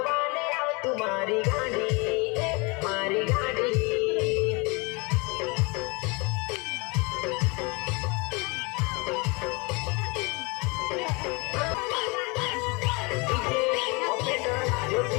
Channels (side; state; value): right; quieter; 28.6 dB